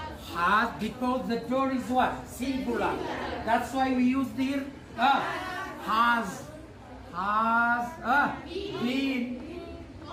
Has, because the door is what? Singular. That's why we use the here. Has been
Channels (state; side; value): identical; both; correlation 1.00